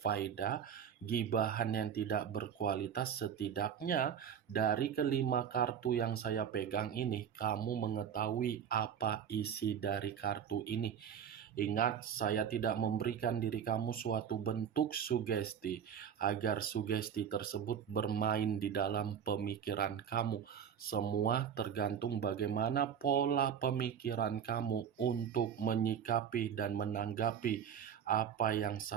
gibahan yang tidak berkualitas. Setidaknya dari kelima kartu yang saya pegang ini, kamu mengetahui apa isi dari kartu ini. Ingat, saya tidak memberikan diri kamu suatu bentuk sugesti agar sugesti tersebut bermain di dalam pemikiran kamu. Semua tergantung bagaimana pola pemikiran kamu untuk menyikapi dan menanggapi apa yang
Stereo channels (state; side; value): quieter; left; 8.3 dB